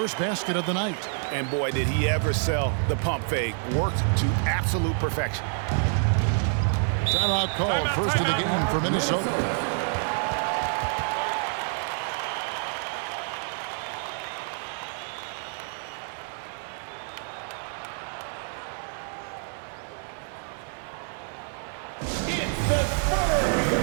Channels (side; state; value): left; silent; 58 dB below the other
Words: basket of the night. And boy, did he ever sell the pump fake. Worked to absolute perfection. Timeout called. First of the game for Minnesota. It's the